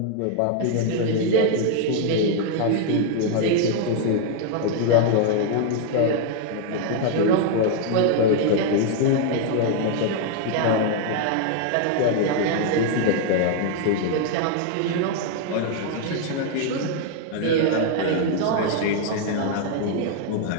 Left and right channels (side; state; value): both; different; correlation 0.00